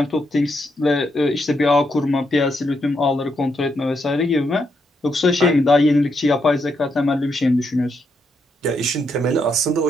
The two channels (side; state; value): both; normal; correlation 0.79